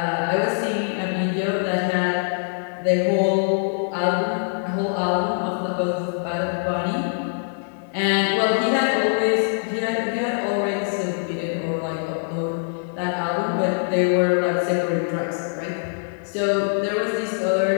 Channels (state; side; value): silent; right; 58 dB below the other